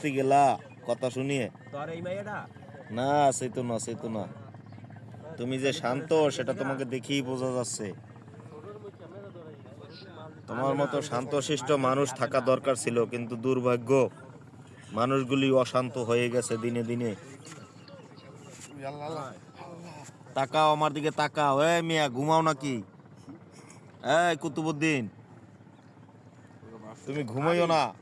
গেলা কথা শুনিয়ে? না, সেতো না, সেতো না। তুমি যে শান্ত সেটা তোমাকে দেখেই বোঝা যাচ্ছে। তোমার মতো শান্তশিষ্ট মানুষ থাকা দরকার ছিল, কিন্তু দুর্ভাগ্য, মানুষগুলি অশান্ত হয়ে গেছে দিনে দিনে। তাকাও আমার দিকে, তাকাও। এই মিয়া, ঘুমাও নাকি? এই কুতুবুদ্দিন, তুমি ঘুমাইও না।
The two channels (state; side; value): identical; both; correlation 1.00